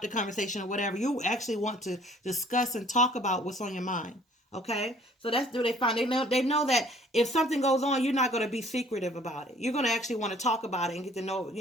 the conversation or whatever. You actually want to discuss and talk about what's on your mind. Okay, so that's what they find. They know that if something goes on, you're not going to be secretive about it. You're going to actually want to talk about it and get to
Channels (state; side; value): normal; both; correlation 0.56